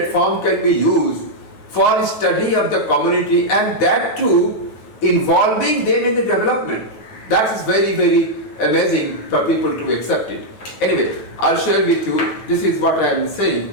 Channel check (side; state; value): right; late; 9.3 ms